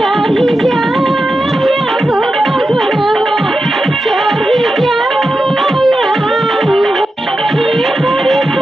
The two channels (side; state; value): both; normal; correlation 0.90